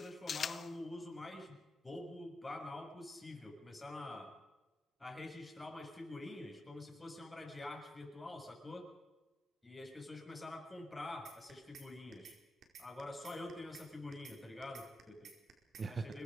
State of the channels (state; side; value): normal; both; correlation 0.88